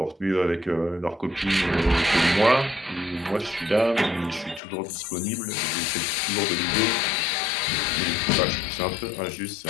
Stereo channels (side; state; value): right; drops out; at 4.6 s